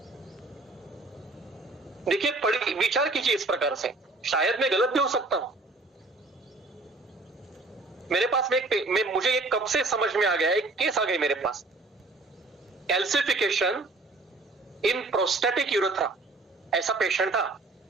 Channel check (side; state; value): left; quieter; 3.2 dB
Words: देखिए, पढ़िए, विचार कीजिए इस प्रकार से। शायद मैं गलत भी हो सकता हूं। मेरे पास में मुझे एक कब से समझ में आ गया, एक केस आ गई मेरे पास। कैल्सिफिकेशन इन प्रोस्टेटिक यूरेथ्रा, ऐसा पेशेंट था।